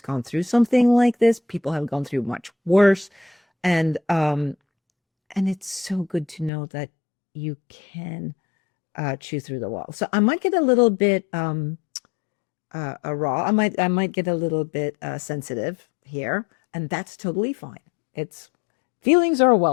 gone through something like this. People have gone through much worse, and it's so good to know that you can chew through the wall. So I might get a little bit raw. I might get a little bit sensitive here, and that's totally fine. It's feelings are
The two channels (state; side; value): drops out; right; at 6.5 s